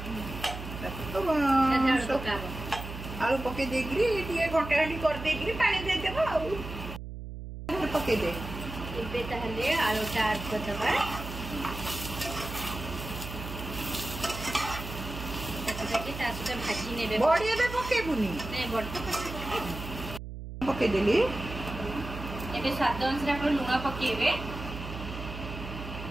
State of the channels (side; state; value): right; noise; hum, 9 dB below the sound